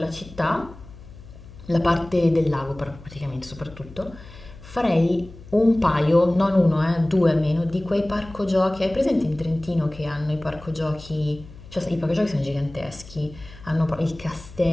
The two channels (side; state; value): left; noise; hum, 18 dB below the sound